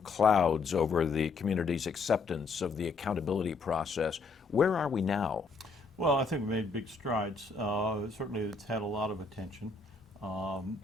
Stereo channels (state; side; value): quieter; right; 4.1 dB